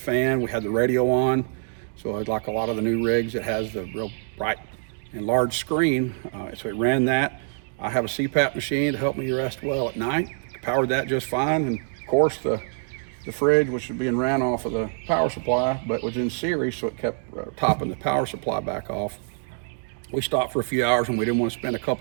We had the radio on, so like a lot of the new rigs, it has the real bright and large screen, so it ran that. I have a CPAP machine to help me rest well at night. Powered that just fine, and of course the the fridge, which was being ran off of the power supply, but was in series, so it kept topping the power supply back off. We stopped for a few hours and we didn't want to spend a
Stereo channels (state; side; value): silent; left; digital silence